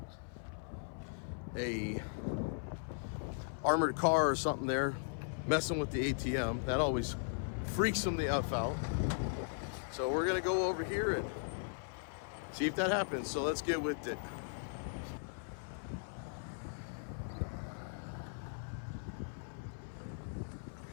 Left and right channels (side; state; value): right; silent; 52 dB below the other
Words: a armored car or something there messing with the ATM. That always freaks them the F out. So we're gonna go over here and see if that happens. So let's get with it.